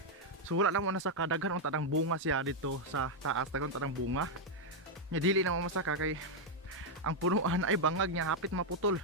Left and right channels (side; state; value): both; normal; correlation 0.00